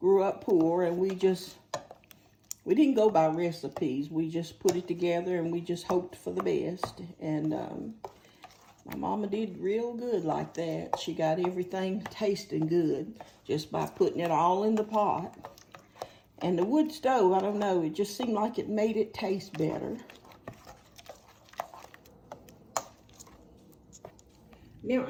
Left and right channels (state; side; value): identical; both; correlation 1.00